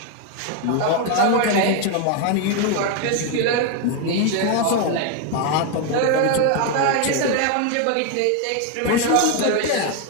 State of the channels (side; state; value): both; different; correlation 0.01